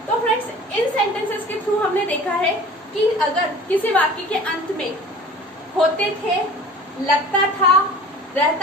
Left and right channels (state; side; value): normal; both; correlation 0.43